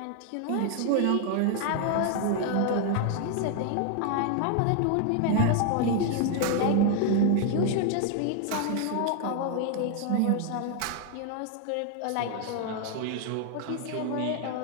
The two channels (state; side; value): different; both; correlation 0.00